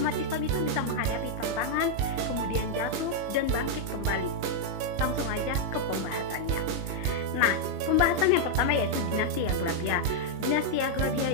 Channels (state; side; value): late; left; 21 ms